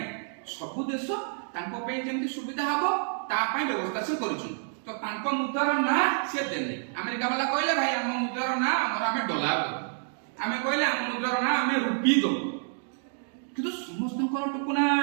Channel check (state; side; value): silent; left; digital silence